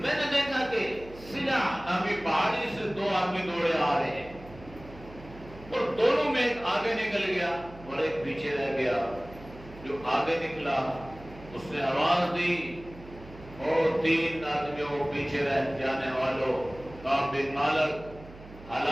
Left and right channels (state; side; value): noise; right; hum, 18 dB below the sound